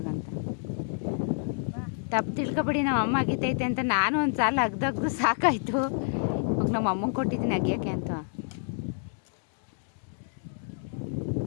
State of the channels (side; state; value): right; silent; digital silence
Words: ಅಂತ. ತಪ್ಪು ತಿಳ್ಕೊಬೇಡಿ, ನಮ್ಮ ಅಮ್ಮ ಅಗಿತೈತೆ ಅಂತ. ನಾನು ಒಂದು ಸಾಲ ಅಗ್ದು ಸಾಕಾಯಿತು, ನಮ್ಮ ಅಮ್ಮಂಗೆ ಕೊಟ್ಟಿದ್ದೀನಿ ಅಗಿಯೋಕ್ಕೆ ಅಂತ.